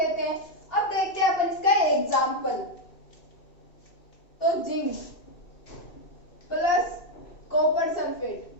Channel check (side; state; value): right; late; 2.6 ms